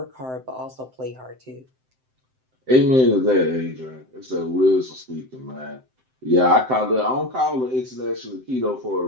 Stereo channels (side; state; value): left; late; 7.7 ms